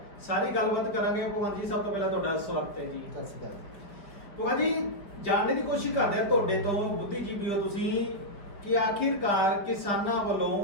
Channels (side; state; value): right; late; 4.9 ms